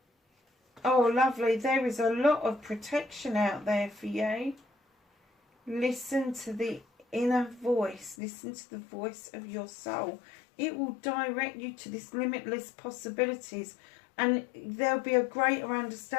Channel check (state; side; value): drops out; right; at 8.2 s